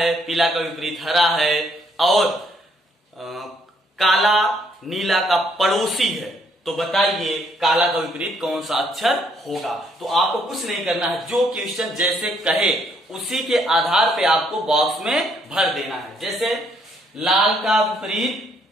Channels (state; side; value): normal; both; correlation 0.69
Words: पीला का विपरीत हरा है और काला नीला का पड़ोसी है, तो बताइए काला का विपरीत कौन सा अक्षर होगा। तो आपको कुछ नहीं करना है, जो क्वेश्चन जैसे कहे उसी के आधार पे आपको बॉक्स में भर देना है। जैसे लाल का विपरीत